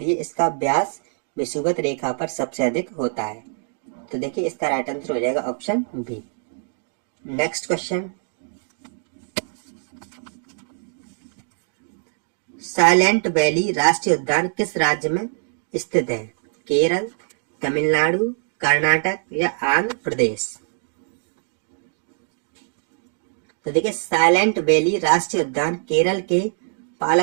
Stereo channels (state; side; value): silent; left; digital silence